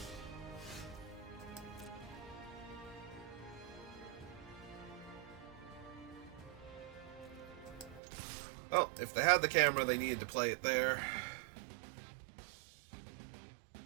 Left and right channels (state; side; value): drops out; left; at 8.0 s